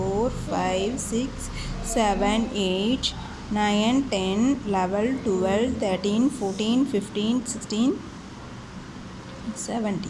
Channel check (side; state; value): both; identical; correlation 1.00